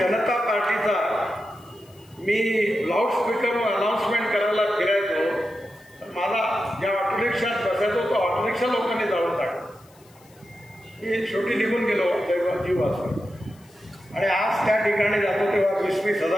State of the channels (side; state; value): left; noise; hiss, 29 dB below the sound